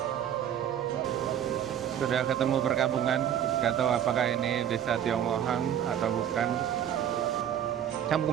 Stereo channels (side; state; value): left; quieter; 9.9 dB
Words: Sudah ketemu perkampungan, nggak tahu apakah ini desa Tionglohang atau bukan.